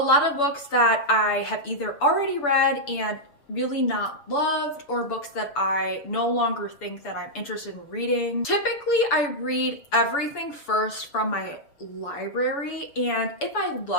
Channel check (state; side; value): late; right; 7.0 ms